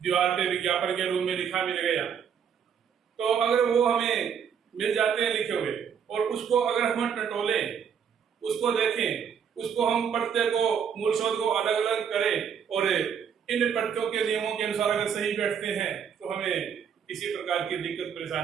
दीवार पे विज्ञापन के रूप में लिखा मिल गया, तो अगर वो हमें मिल जाते हैं लिखे हुए, और उसको अगर हम टटोले, उसको देखें, उसको हम प्रत्यय को, मूल शब्द को अलग अलग करें, और इन प्रत्ययों के नियमों के अनुसार अगर सही बैठते हैं, तो हमें किसी प्रकार की दिक्कत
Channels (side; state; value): left; quieter; 7.6 dB